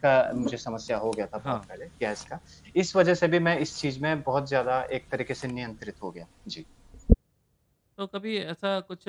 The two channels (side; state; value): both; identical; correlation 1.00